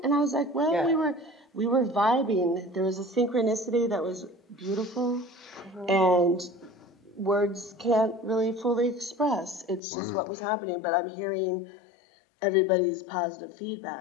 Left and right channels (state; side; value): drops out; right; at 9.8 s